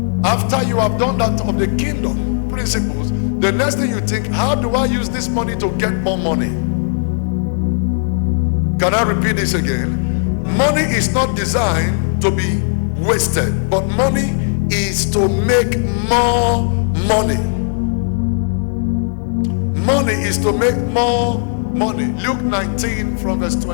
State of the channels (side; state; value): right; silent; digital silence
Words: after you have done that of the kingdom principles, the next thing you think, how do I use this money to get more money? Can I repeat this again? Money is not designed to be wasted, but money is to make more money. Money is to make more money. Luke 19 from verse